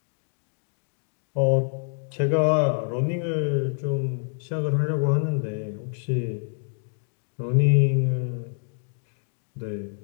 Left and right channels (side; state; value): right; silent; 58 dB below the other